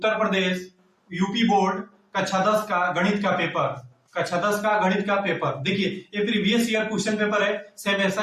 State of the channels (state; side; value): identical; both; correlation 1.00